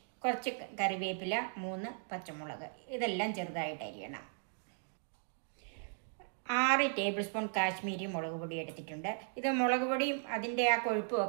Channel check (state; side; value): silent; left; digital silence